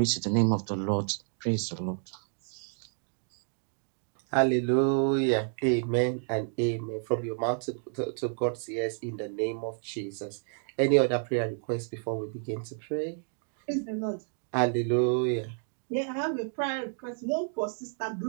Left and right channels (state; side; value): silent; left; 58 dB below the other